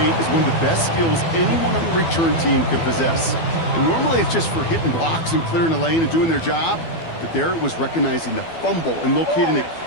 is one of the best skills anyone on the return team can possess. And normally it's just for hitting blocks and clearing a lane and doing their job. But there it was recognizing the fumble and locating it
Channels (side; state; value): right; late; 12 ms